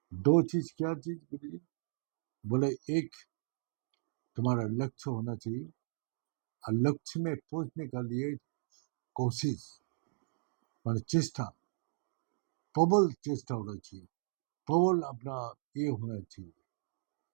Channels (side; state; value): left; silent; digital silence